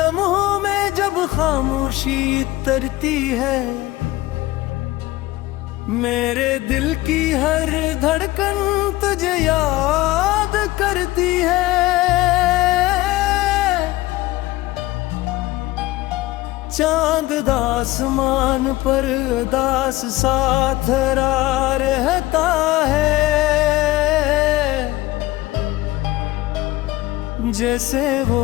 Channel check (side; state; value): right; quieter; 18.3 dB